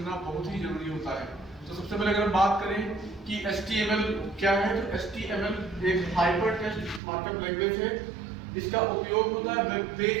बहुत ही जरूरी होता है। तो सबसे पहले अगर बात करें कि HTML क्या है, तो HTML एक हाइपर टेक्स्ट मार्कअप लैंग्वेज है। इसका उपयोग होता है वेब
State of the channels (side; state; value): left; drops out; at 7.0 s